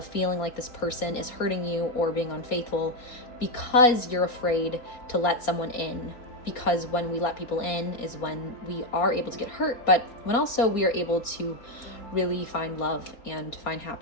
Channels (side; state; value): right; late; 4.4 ms